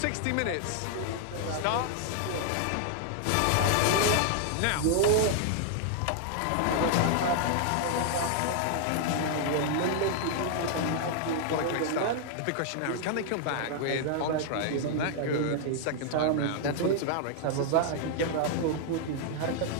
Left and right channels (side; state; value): both; different; correlation 0.00